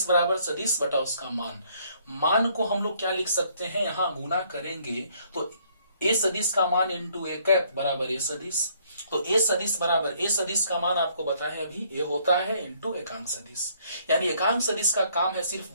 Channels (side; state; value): both; inverted; correlation -0.65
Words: बराबर सदिश बटा उसका मान। मान को हम लोग क्या लिख सकते हैं, यहां गुना करेंगे तो ए सदिश का मान इंटू ए कैप बराबर ए सदिश, तो ए सदिश बराबर ए सदिश का मान आपको बताएं अभी ए होता है इंटू एकांक सदिश। यानी एकांक सदिश का काम है सिर्फ